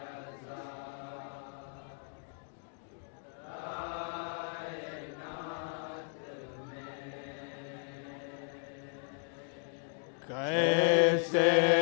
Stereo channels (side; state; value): right; silent; 54 dB below the other